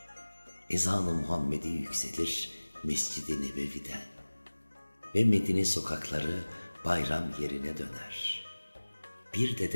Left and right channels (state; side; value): inverted; both; correlation -1.00